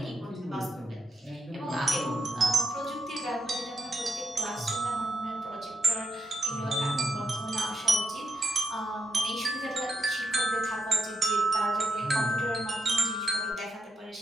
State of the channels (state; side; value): normal; both; correlation 0.83